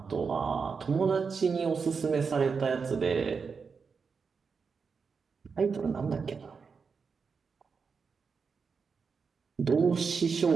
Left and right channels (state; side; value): quieter; left; 5.4 dB